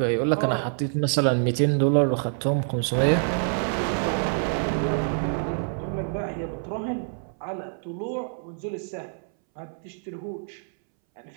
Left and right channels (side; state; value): left; silent; 61 dB below the other